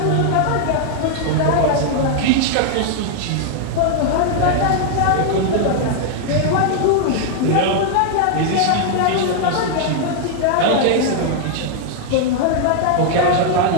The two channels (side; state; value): both; different; correlation 0.00